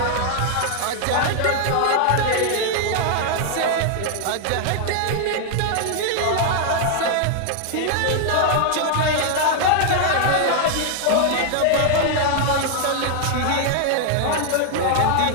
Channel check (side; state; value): both; different; correlation 0.00